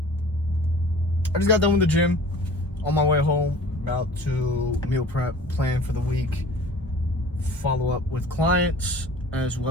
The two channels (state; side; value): normal; both; correlation 0.44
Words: just got done with the gym. On my way home, about to meal prep, plan for the week, follow up with clients as